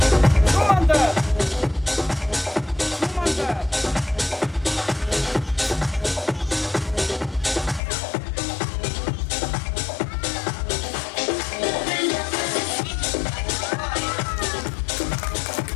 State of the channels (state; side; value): drops out; right; at 7.8 s